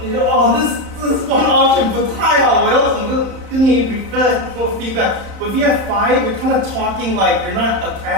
你说this one option 不太好，我要怎么跟你 feedback. But if you have 5, you're kind of talking like you're not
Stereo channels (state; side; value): late; left; 31 ms